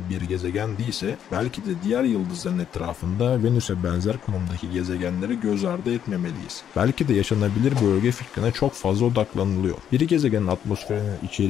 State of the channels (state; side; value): quieter; right; 9.3 dB